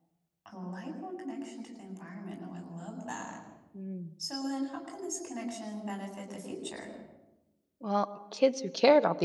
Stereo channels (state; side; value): identical; both; correlation 1.00